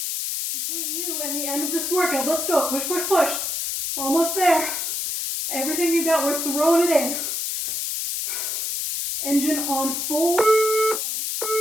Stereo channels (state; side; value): noise; left; hiss, 2 dB below the sound